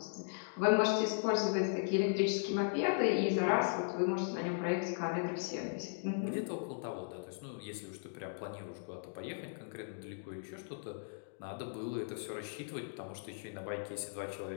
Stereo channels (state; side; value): silent; right; digital silence